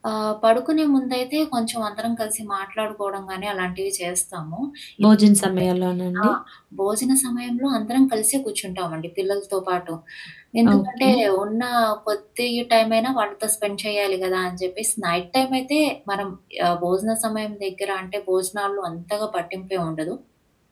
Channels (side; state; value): both; identical; correlation 1.00